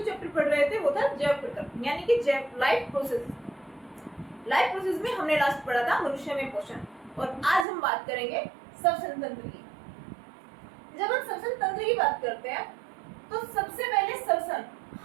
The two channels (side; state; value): left; drops out; at 7.7 s